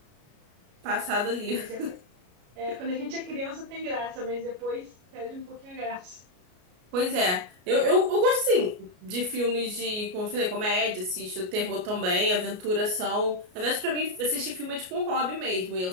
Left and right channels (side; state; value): left; late; 33 ms